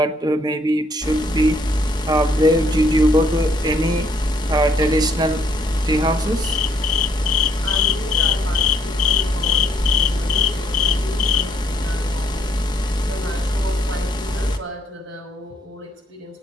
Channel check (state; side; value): normal; both; correlation 0.69